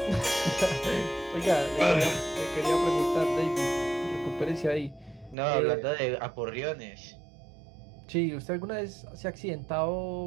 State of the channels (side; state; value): left; drops out; at 5.4 s